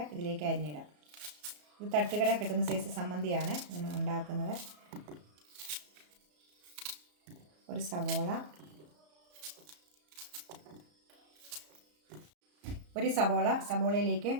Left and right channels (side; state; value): left; late; 34 ms